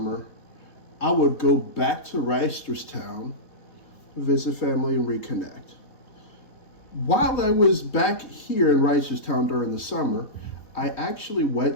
I would go back to Reisterstown, visit family, and reconnect. While I was back here in Reisterstown during the summer, I actually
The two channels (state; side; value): late; right; 3.4 ms